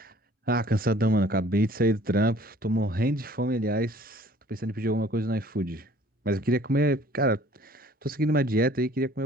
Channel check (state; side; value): normal; both; correlation 0.54